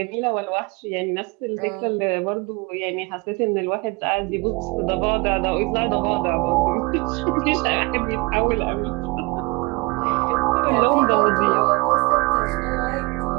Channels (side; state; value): left; quieter; 26.6 dB